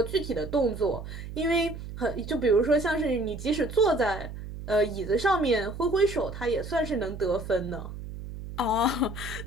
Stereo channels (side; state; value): right; noise; hum, 10 dB below the sound